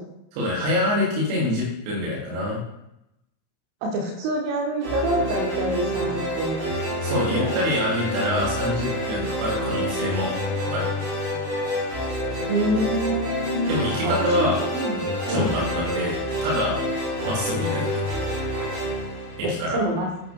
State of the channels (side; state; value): left; late; 31 ms